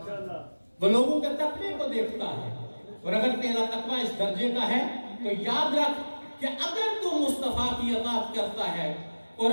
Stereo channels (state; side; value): inverted; both; correlation -1.00